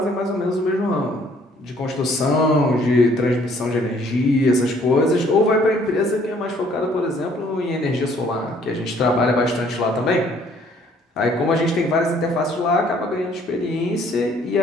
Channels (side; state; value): both; normal; correlation 0.61